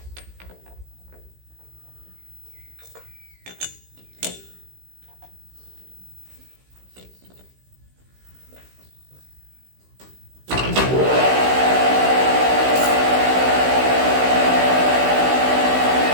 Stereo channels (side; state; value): left; late; 16 ms